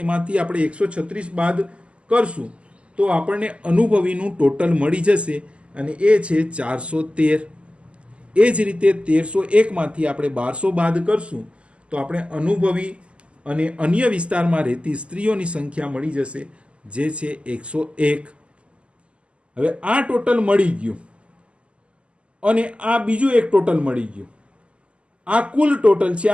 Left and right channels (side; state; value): left; late; 0.055 ms